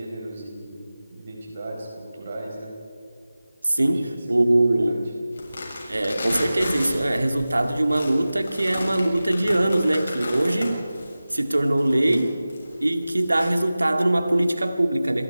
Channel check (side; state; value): both; inverted; correlation -0.96